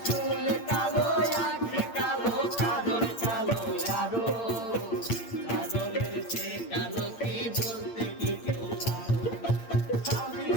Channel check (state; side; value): late; right; 8.7 ms